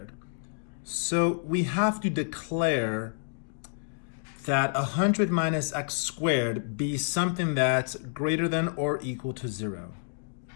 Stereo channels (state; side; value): silent; right; digital silence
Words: So we have to declare that 100 minus x squared be something that's greater than or equal to 0.